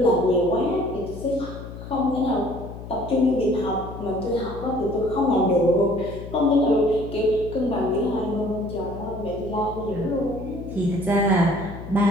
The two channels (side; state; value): left; noise; hum, 12 dB below the sound